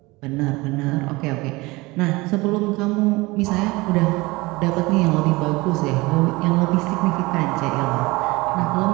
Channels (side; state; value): left; quieter; 22.7 dB